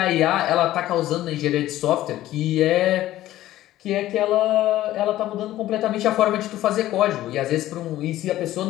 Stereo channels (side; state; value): right; quieter; 14.6 dB